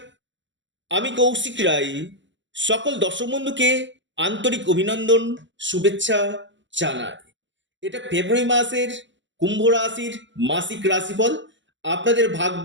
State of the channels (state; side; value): late; left; 0.54 ms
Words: আমি কৌশিক রায়। সকল দর্শক বন্ধুকে আন্তরিক অভিনন্দন, শুভেচ্ছা জানাই। এটা ফেব্রুয়ারি মাসের কুম্ভ রাশির মাসিক রাশিফল। আপনাদের